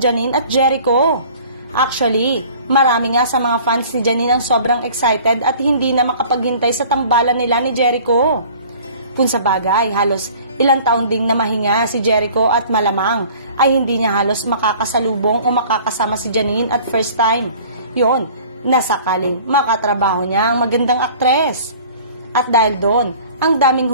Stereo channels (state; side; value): inverted; both; correlation -0.48